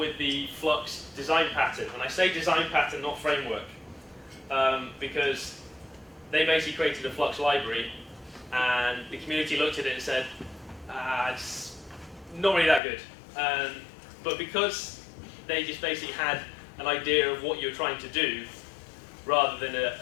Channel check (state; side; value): drops out; right; at 12.8 s